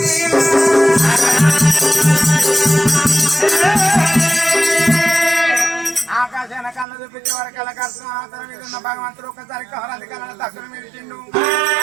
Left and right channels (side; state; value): left; drops out; at 6.9 s